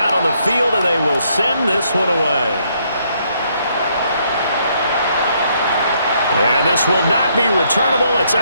on the field, and they will send this one away. And this will not be returnable. It's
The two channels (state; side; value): inverted; both; correlation -0.71